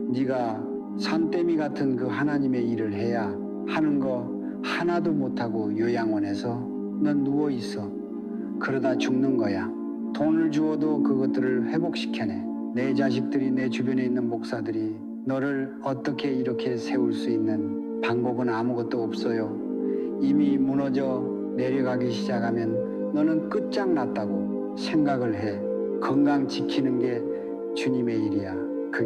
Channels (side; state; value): both; identical; correlation 1.00